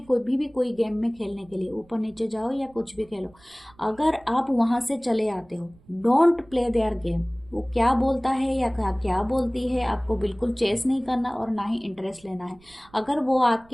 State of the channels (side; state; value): right; noise; rumble, 28 dB below the sound